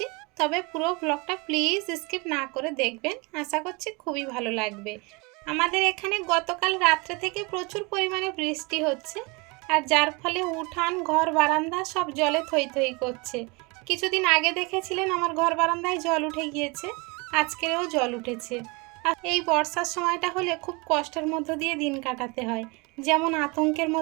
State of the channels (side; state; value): left; quieter; 28.1 dB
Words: তবে পুরো ব্লগটা প্লিজ স্কিপ না করে দেখবেন, আশা করছি খুবই ভালো লাগবে। আমাদের এখানে গতকাল রাত্রে থেকে প্রচুর পরিমাণে বৃষ্টি হচ্ছে, আর যার ফলে উঠান, ঘর, বারান্দা সব জলে থই থই করছে। কিছুদিন আগে দেখেছিলেন আমার ঘর বারান্দায় জল উঠে গিয়েছে, আজকেও জল উঠেছে। আর এই বর্ষার সময়টা হলে খুব কষ্টের মধ্য দিয়ে দিন কাটাতে হয়, যেমন আতঙ্কের